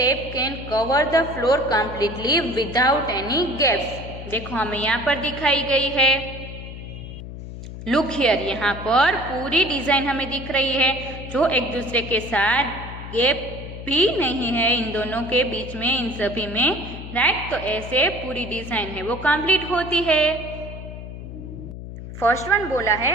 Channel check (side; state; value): left; noise; hum, 11 dB below the sound